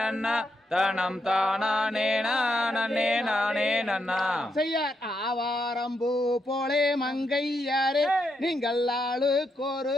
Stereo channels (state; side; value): normal; both; correlation 0.81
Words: தனம் தானே நானே நானே நன்னா செய்யார் ஆவாரம்பூ போலே மங்கையாரே நீங்கள் ஆளுக்கொரு